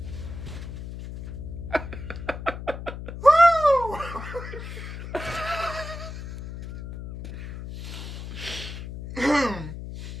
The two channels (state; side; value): noise; left; hum, 9 dB below the sound